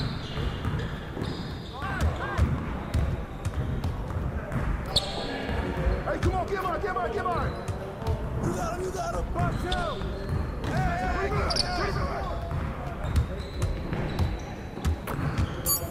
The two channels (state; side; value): identical; both; correlation 1.00